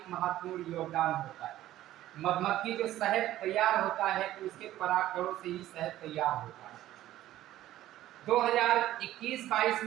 महत्वपूर्ण योगदान होता है। मधुमक्खी जो शहद तैयार होता है तो उसके परागकणों से ही शहद तैयार होता है। 2021-22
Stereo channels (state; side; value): quieter; left; 14.1 dB